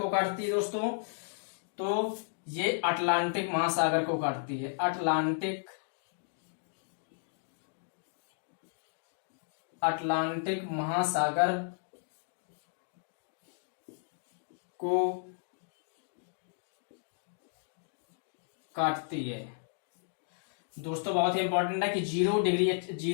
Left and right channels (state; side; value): silent; right; digital silence